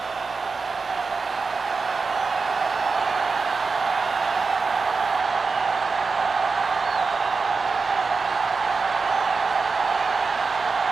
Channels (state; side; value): quieter; left; 4.6 dB